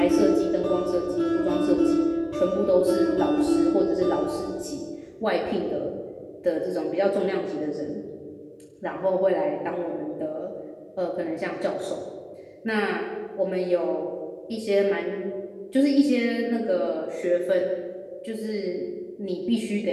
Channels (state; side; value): identical; both; correlation 1.00